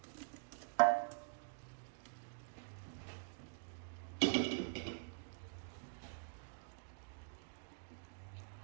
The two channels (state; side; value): silent; left; digital silence